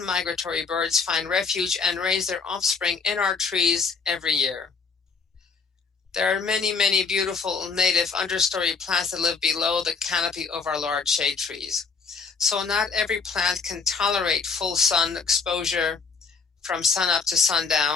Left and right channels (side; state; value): right; quieter; 5.1 dB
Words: migratory birds find refuge and raise their offspring in our trees every year. There are many, many beautiful native understory plants that live below the canopy of our large shade trees. So not every plant can tolerate full sun exposure from sunup to